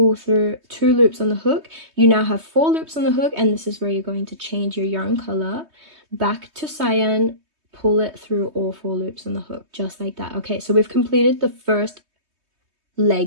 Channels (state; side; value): late; left; 3.2 ms